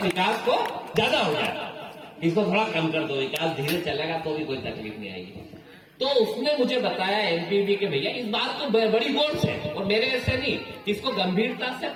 विकास को ज्यादा हो जाए, इसको थोड़ा कम कर दो, विकास धीरे चलेगा तो भी कोई तकलीफ नहीं आएगी। तो उसने मुझे बताया एमपीबी के भैया इस बात को बड़ी गौर से और मेरे ऐसे नहीं, इसको गंभीरता से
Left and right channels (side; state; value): both; identical; correlation 1.00